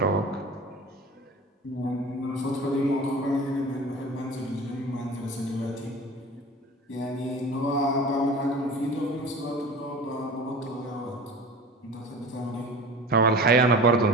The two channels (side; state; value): both; normal; correlation 0.37